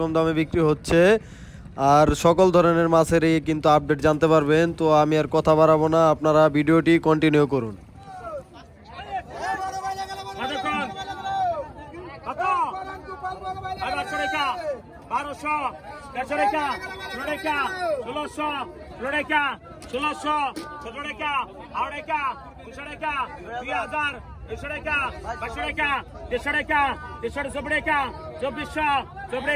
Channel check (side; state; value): both; identical; correlation 1.00